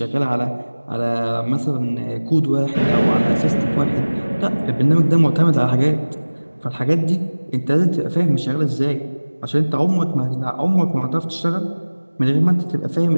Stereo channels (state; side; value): inverted; both; correlation -1.00